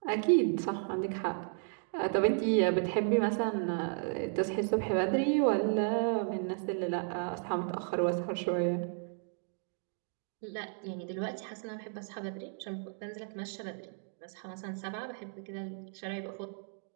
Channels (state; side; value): silent; left; 55 dB below the other